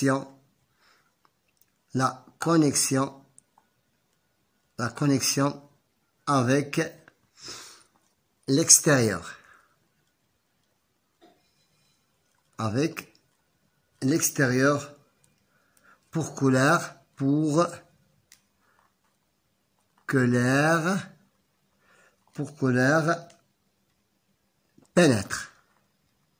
avec l'extérieur. Avec l'extérieur pour que l'air pénètre.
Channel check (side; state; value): both; identical; correlation 1.00